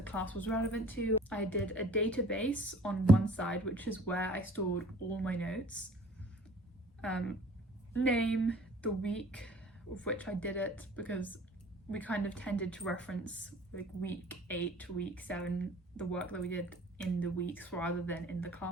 class was relevant to. I did a database on one side, which is where I stored all my notes. Name, the week of which I did it, because we kind of tended to reference like week 8 to week 7, the work that we did in the weeks rather than in the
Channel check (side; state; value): both; normal; correlation 0.50